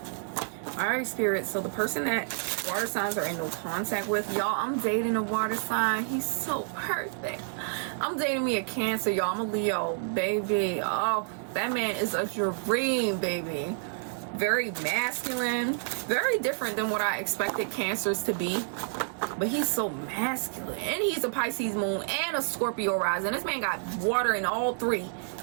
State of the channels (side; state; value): left; silent; 57 dB below the other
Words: All right, Spirit. So the person that water signs are in no contact with, y'all, I'm dating a water sign. He's so perfect. I'm dating me a Cancer, y'all. I'm a Leo, baby. Oh, that man is a dream, baby. Very masculine, very different than what I expected Cancers to be. But he's so masculine, and he's a Pisces moon and a Scorpio rising. This man got water in all three,